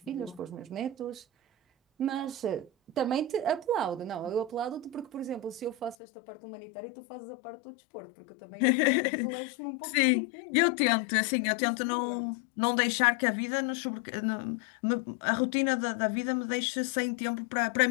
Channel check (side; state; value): right; drops out; at 6.0 s